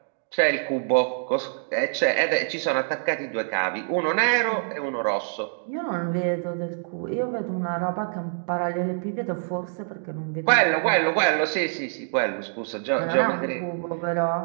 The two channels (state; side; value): silent; left; digital silence